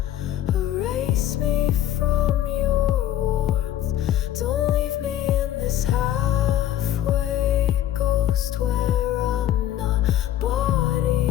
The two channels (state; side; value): quieter; right; 12.0 dB